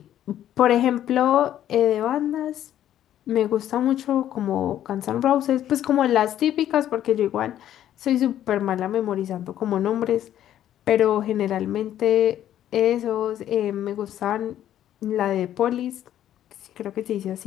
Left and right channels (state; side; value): quieter; right; 11.5 dB